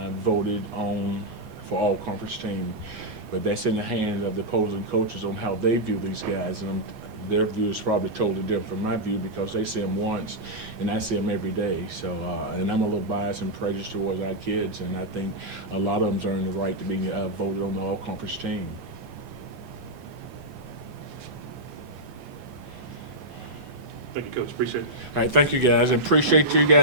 voted on for all conference team. But that's in the hands of the opposing coaches on how they view these guys. And their view is probably totally different from my view because they see them once and I see them every day. So, and I'm a little biased and prejudiced towards our kids, and I think a lot of them's earned the right to be voted on the all-conference team. Thank you, Coach. Appreciate it. All right, thank you guys. I appreciate you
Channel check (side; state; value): left; late; 15 ms